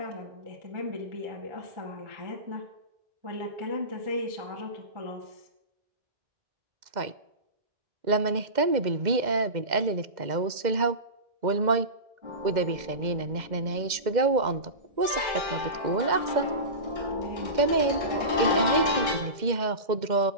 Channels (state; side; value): late; left; 2.1 ms